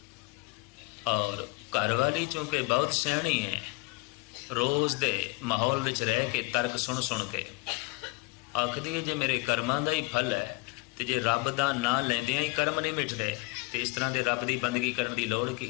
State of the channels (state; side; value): quieter; right; 25.0 dB